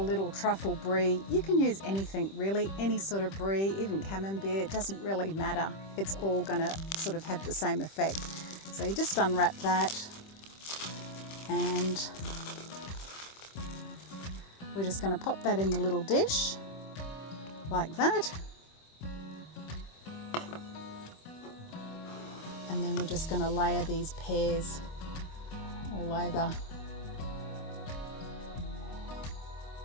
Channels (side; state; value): right; late; 26 ms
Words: truffle brie. You can use anything really, any sort of brie, even camembert, it doesn't really matter. It's all going to sort of have the same effect. So you just unwrap that and we're just going to pop that in the little dish like that. And then we're just going to layer these pears all over.